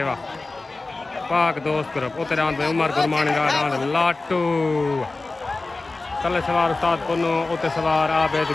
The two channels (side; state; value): right; quieter; 3.3 dB